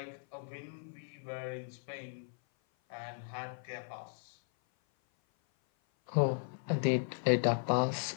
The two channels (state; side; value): silent; right; 54 dB below the other